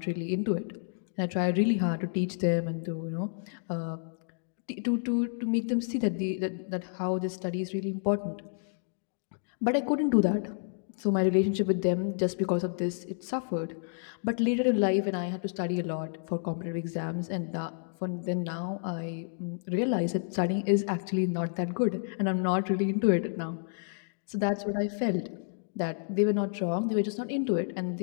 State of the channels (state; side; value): silent; right; digital silence